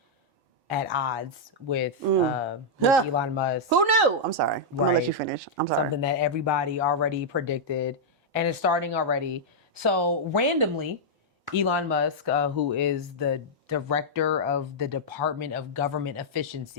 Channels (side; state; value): both; normal; correlation -0.06